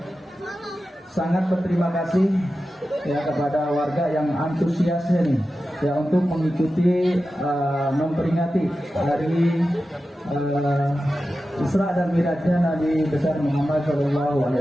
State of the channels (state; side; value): normal; both; correlation 0.93